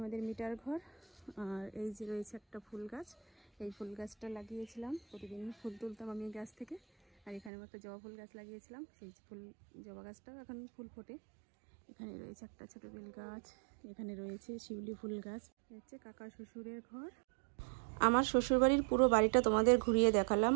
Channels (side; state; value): left; drops out; at 7.5 s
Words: আমাদের মিটার ঘর। আর এই যে রয়েছে একটা ফুল গাছ। এই ফুল গাছটা লাগিয়েছিলাম, প্রতিদিন ফুল তুলতাম আমি গাছ থেকে। আর এখানে একটা জবা ফুল গাছ লাগিয়েছিলাম, সেই জবা গাছটাও এখন ফুল ফোটে। এখানে রয়েছে একটা ছোট বেল গাছ, এখানে রয়েছে শিউলি ফুল গাছ। হচ্ছে কাকা শ্বশুরের ঘর। আমার শ্বশুরবাড়ির পুরো বাড়িটা তোমাদের ঘুরিয়ে দেখালাম।